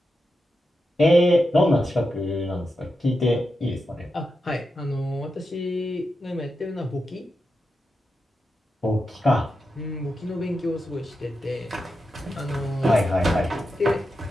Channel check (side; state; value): both; normal; correlation 0.88